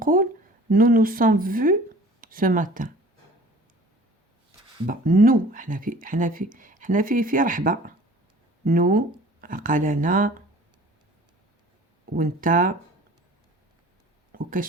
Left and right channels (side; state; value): both; normal; correlation 0.47